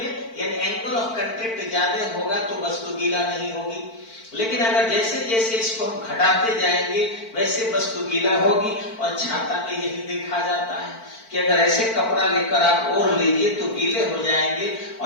यानी एंगल ऑफ कांटेक्ट ज्यादा होगा तो वस्तु गीला नहीं होगी। लेकिन अगर जैसे जैसे इसको हम घटाते जाएंगे वैसे वस्तु गीला होगी। और छाता में यही देखा जाता है कि अगर ऐसे कपड़ा लेकर आप ओढ़ लीजिए तो गीले हो जाएंगे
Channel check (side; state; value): right; late; 4.5 ms